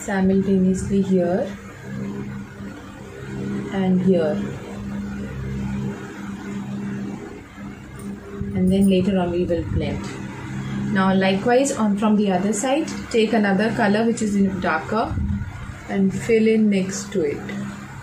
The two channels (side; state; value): both; identical; correlation 1.00